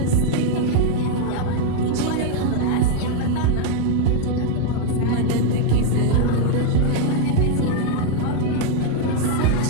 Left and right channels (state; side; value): different; both; correlation 0.00